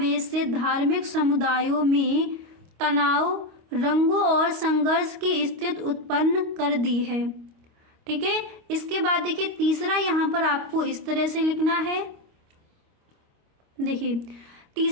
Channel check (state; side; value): late; left; 25 ms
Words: से धार्मिक समुदायों में तनाव, रंगों और संघर्ष की स्थिति उत्पन्न कर दी है। ठीक है, इसके बाद देखिए तीसरा यहाँ पर आपको इस तरह से लिखना है। देखिए